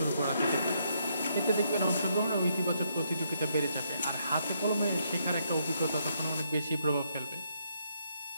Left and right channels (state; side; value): inverted; both; correlation -0.75